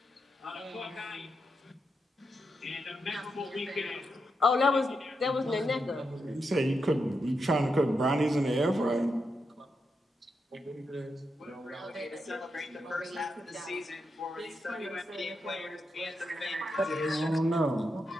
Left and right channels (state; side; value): normal; both; correlation 0.85